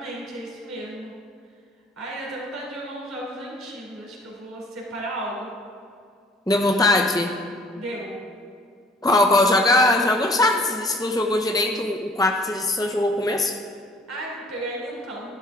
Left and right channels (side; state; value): both; normal; correlation 0.55